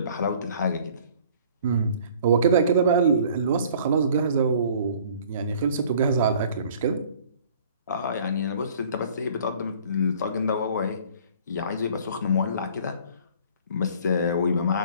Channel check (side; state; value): both; inverted; correlation -0.52